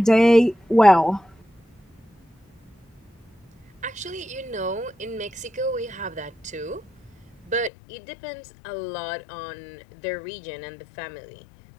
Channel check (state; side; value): drops out; right; at 7.7 s